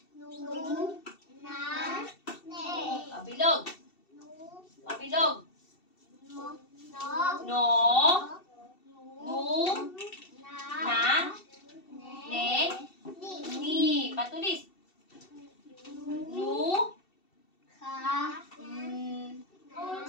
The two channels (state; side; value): late; right; 2.7 ms